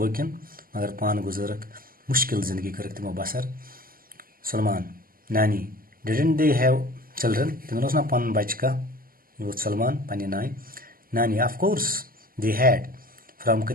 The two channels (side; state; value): left; late; 0.42 ms